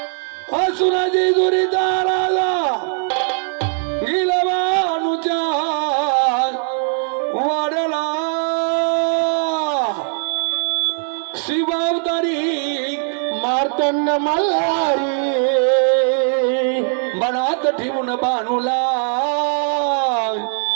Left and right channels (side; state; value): left; silent; 60 dB below the other